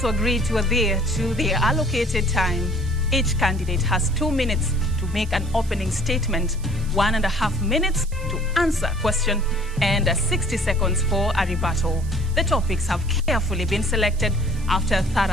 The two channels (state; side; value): noise; right; hiss, 21 dB below the sound